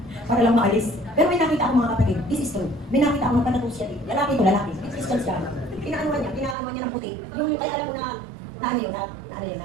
Para lang maalis. Pero may nakita ako mga kapatid, this is true. May nakita ako magpatato siya dito. Lalaki to, lalaki. Christian siya. Pinaanuhan niya ng puti. Yung kaya alam mo na ano yun, na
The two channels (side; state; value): left; drops out; at 6.6 s